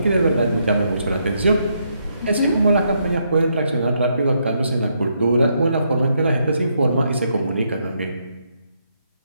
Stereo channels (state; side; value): inverted; both; correlation -0.77